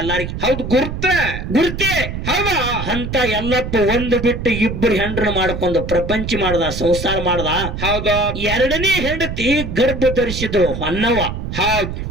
ಎಲ್ಲಾರಿಗೆ. ಹೌದು, ಗುರ್ತೆ. ಹೌದಾ? ಅಂತ ಎಲ್ಲಪ್ಪ ಒಂದು ಬಿಟ್ಟು ಇಬ್ಬರು ಹೆಂಡ್ರನ್ನ ಮಾಡ್ಕೊಂಡು ಪ್ರಪಂಚ ಮಾಡ್ದ, ಸಂಸಾರ ಮಾಡ್ದ. ಹೌದಾ? 2ನೇ ಹೆಂಡತಿ ಗರ್ಭ ಧರಿಸಿದ್ರು, ಹೊನ್ನವ್ವ. ಹೌದ್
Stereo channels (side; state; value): right; noise; rumble, 6 dB below the sound